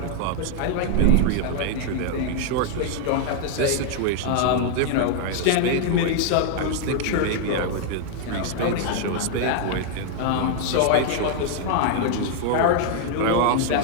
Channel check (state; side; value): different; both; correlation 0.00